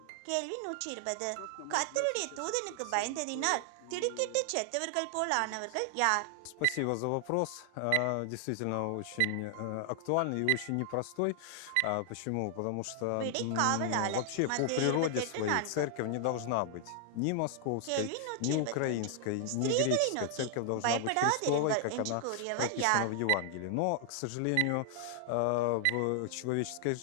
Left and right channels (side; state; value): both; different; correlation 0.00